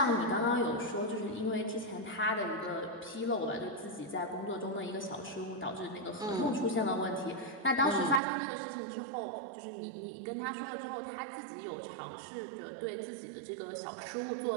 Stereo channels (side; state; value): left; drops out; at 8.2 s